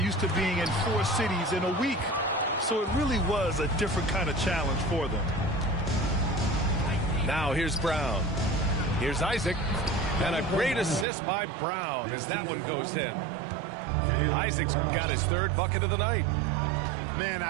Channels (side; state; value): left; drops out; at 11.1 s